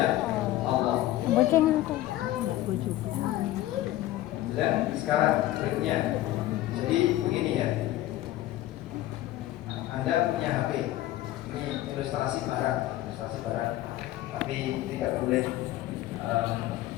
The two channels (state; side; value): quieter; right; 15.1 dB